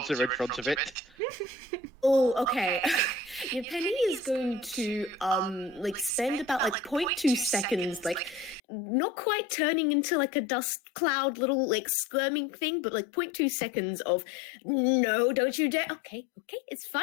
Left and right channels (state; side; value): drops out; right; at 8.6 s